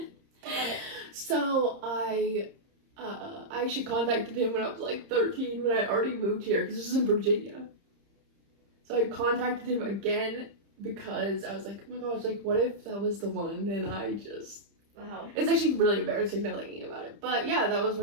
So I actually contacted him when I was like 13, when I already moved here, because this is in Virginia. So I contacted him again because I was like, oh my gosh, like, what if that was the one? And I just, Wow. it's actually really embarrassing now thinking about it. But yeah, that was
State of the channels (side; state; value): left; late; 30 ms